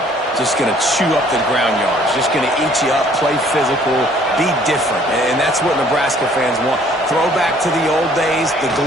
Just going to chew up the ground yards. Just going to eat you up, play physical, be different. And that's what Nebraska fans want. Throw back to the old days, the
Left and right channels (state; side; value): normal; both; correlation 0.59